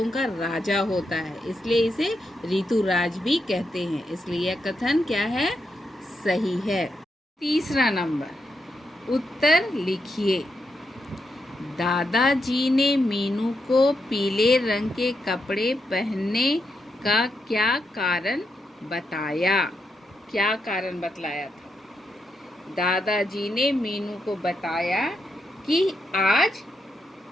का राजा होता है, इसलिए इसे ऋतुराज भी कहते हैं, इसलिए यह कथन क्या है? सही है। तीसरा नंबर, उत्तर लिखिए। दादाजी ने मीनू को पीले रंग के कपड़े पहनने का क्या कारण बताया? क्या कारण बतलाया था? दादाजी ने मीनू को बताया कि आज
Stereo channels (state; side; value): normal; both; correlation 0.83